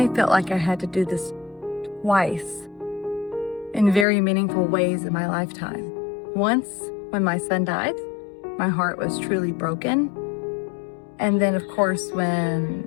felt like I had to do this twice in very meaningful ways in my lifetime. Once, when my son died, my heart was truly broken. And then, of course, when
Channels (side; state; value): right; drops out; at 4.0 s